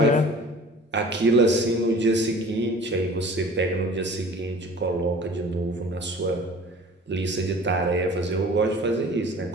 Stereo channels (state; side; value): normal; both; correlation 0.45